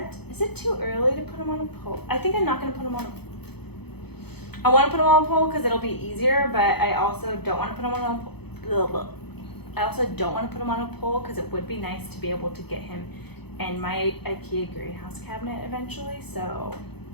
too early to put him on a pole? I think I'm not gonna put him on I wanna put him on a pole because it'll be easier, but I also don't wanna put him on a pole. I also don't wanna put him on a pole because it would be nice to be able to get him in my IKEA greenhouse cabinet eventually, so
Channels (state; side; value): late; right; 0.98 ms